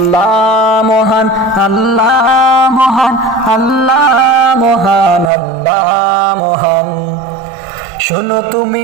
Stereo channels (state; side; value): drops out; left; at 5.3 s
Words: মহান, আল্লাহ মহান, আল্লাহ মহান, আল্লাহ মহান। শোনো তুমি